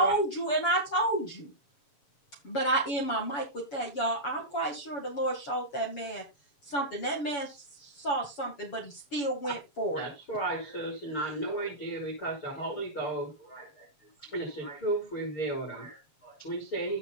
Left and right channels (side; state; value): right; late; 7.0 ms